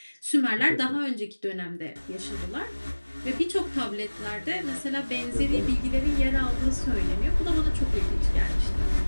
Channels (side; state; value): both; inverted; correlation -1.00